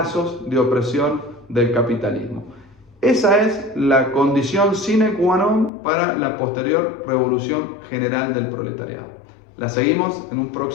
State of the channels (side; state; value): right; drops out; at 5.7 s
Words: de opresión del capitalismo. Esa es la condición sine qua non para la posterior revolución general del proletariado. La seguimos en un